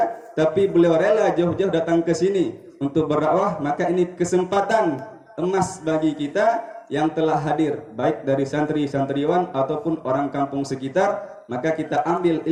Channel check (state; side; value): identical; both; correlation 1.00